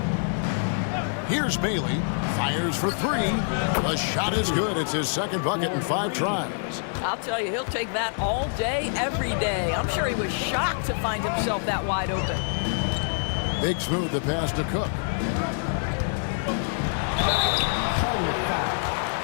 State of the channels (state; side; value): silent; right; digital silence